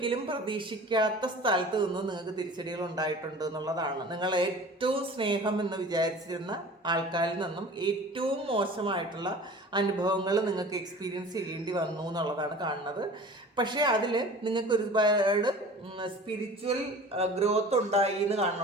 പ്രതീക്ഷിക്കാത്ത സ്ഥലത്ത് നിന്ന് നിങ്ങൾക്ക് തിരിച്ചടികൾ ഉണ്ടായിട്ടുണ്ട് എന്നുള്ളതാണ്. നിങ്ങൾ ഏറ്റവും സ്നേഹം എന്ന് വിചാരിച്ചിരുന്ന ആൾക്കാരിൽ നിന്നും ഏറ്റവും മോശമായിട്ടുള്ള അനുഭവങ്ങൾ നിങ്ങൾക്ക് എക്സ്പീരിയൻസ് ചെയ്യേണ്ടി വന്നു എന്നുള്ളതാണ് കാണുന്നത്. പക്ഷേ അതിൽ നിങ്ങൾക്ക് ഒരുപാട് സ്പിരിച്വൽ ഗ്രോത്ത് ഉണ്ടായി എന്ന്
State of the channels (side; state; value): both; normal; correlation 0.41